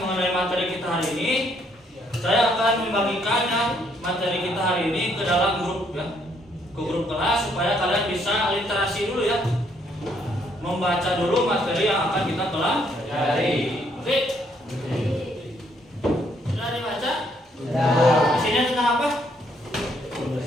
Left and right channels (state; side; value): normal; both; correlation 0.69